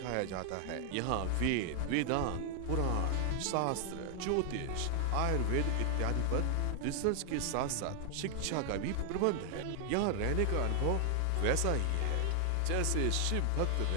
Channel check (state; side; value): different; both; correlation 0.00